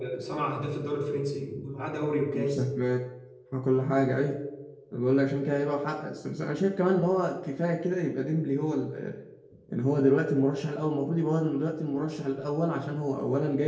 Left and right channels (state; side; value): identical; both; correlation 1.00